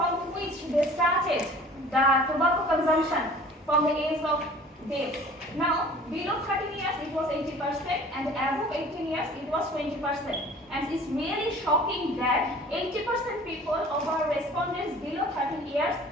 which they started the tobacco consumption from the age of death. Now, below 13 years it was 80%, and above 18 years it was 20%. And it's really shocking that 80% people of our respondents below 13 years,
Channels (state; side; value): normal; both; correlation 0.47